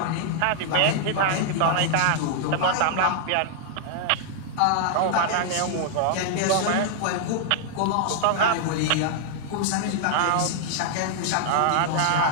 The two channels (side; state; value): both; different; correlation -0.01